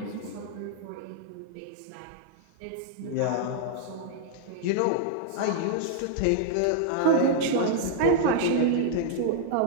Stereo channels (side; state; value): both; different; correlation -0.01